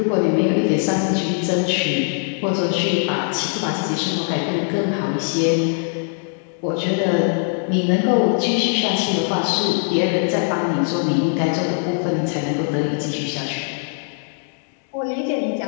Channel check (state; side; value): silent; right; 57 dB below the other